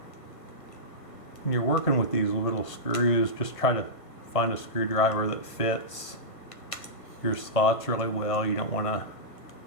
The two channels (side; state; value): right; late; 1.5 ms